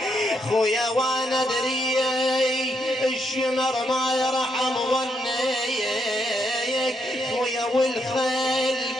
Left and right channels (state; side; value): normal; both; correlation 0.77